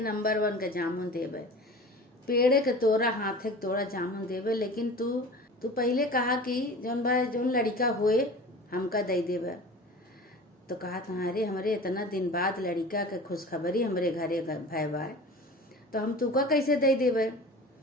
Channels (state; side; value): normal; both; correlation 0.38